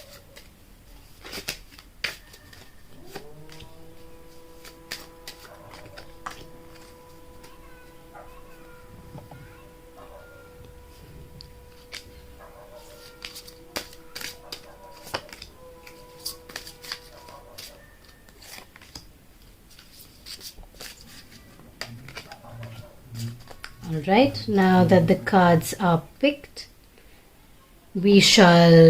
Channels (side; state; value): both; identical; correlation 1.00